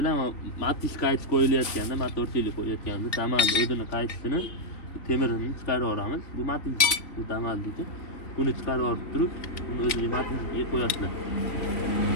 matish qaytish qo'yilayotganda, motorchilik qo'yayotganda Damazi o'zini qaytishini temirini chiqarib olamiz. Bu matish, bu Damazniki. Buni chiqarib olib turib, buni o'ziga matishga qo'yasizlar.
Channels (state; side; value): late; right; 3.3 ms